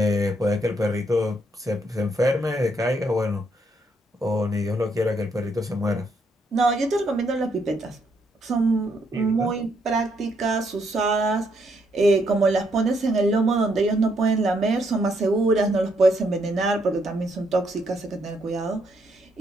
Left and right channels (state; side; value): normal; both; correlation 0.74